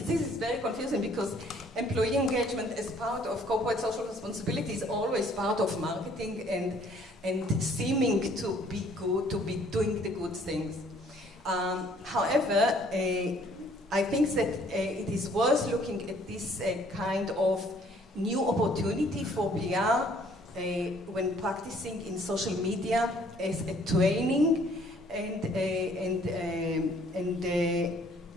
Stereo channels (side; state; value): both; normal; correlation 0.60